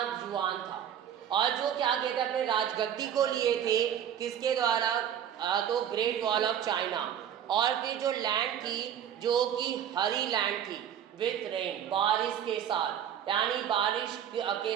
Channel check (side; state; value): left; quieter; 9.5 dB